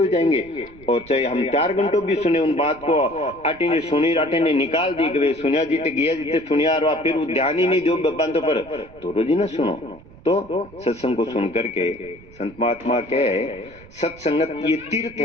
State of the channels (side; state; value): right; noise; rumble, 22 dB below the sound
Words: जाएंगे। और चाहे हम 4 घंटों भी सुने उन बात को, आटे ने सुनी राटे ने निकाल दी कि सुनिया जीते गया जीते सुनिया, और फिर वो ध्यान ही नहीं दो बंदों पर, तो रोज ही ना सुनो। तो सत्संग को सुन करके संत महात्मा कहे सत्संगत ये तीर्थ